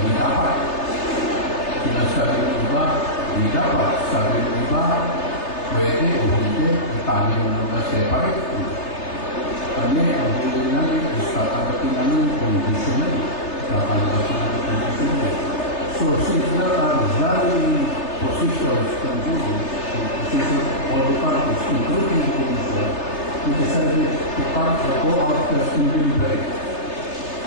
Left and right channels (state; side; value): late; right; 3.3 ms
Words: dapat. Sinasabi ng iba, hindi dapat. Sabi ng iba, pwede o hindi, itangin mo na separate. Kami, ang huli namin is tatanggapin namin conditionally. Tatanggapin namin conditionally. So, since there are varying positions from Google, positions of all the parties, including the Commission, we decided to go out first in deliberate.